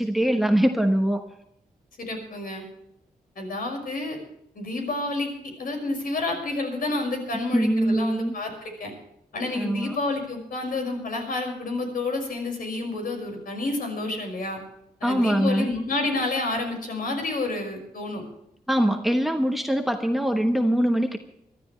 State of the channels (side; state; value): both; normal; correlation 0.78